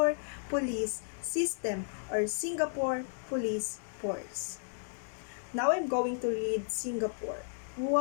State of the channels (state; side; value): silent; right; digital silence